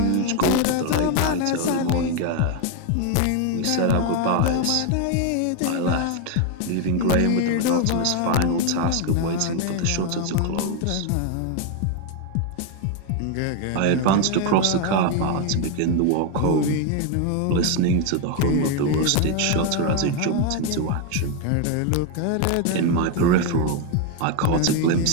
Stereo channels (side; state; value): both; different; correlation 0.01